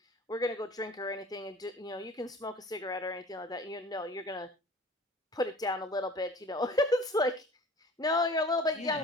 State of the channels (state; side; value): normal; both; correlation 0.44